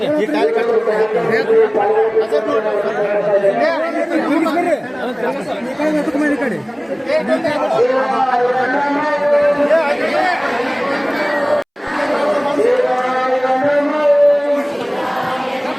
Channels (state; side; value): identical; both; correlation 1.00